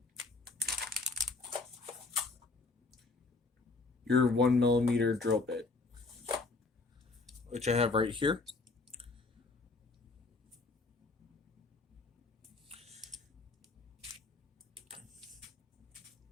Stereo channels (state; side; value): quieter; right; 3.6 dB